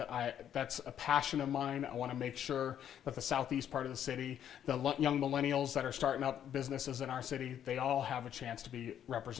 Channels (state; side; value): quieter; right; 9.9 dB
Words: that's a passion of mine. I want to make sure that the southeast part of the city, the young millennials that are starting up businesses in our city, they all have a chance to be